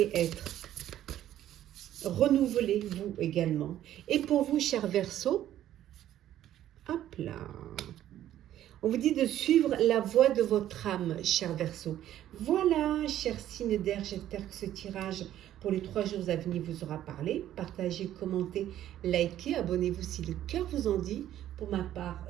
être. Renouvelez-vous également. Et pour vous, chers Verseaux, hop là. On vous dit de suivre la voie de votre âme, chers Verseaux. Voilà, chers signes d'air, j'espère que ce tirage pour les 3 jours à venir vous aura parlé. Partagez, commentez, likez, abonnez-vous si le cœur vous en dit. Pour ma part,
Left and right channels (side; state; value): left; quieter; 12.2 dB